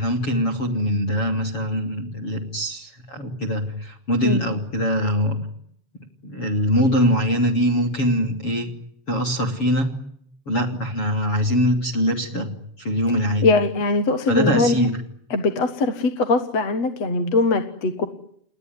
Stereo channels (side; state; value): right; late; 7.2 ms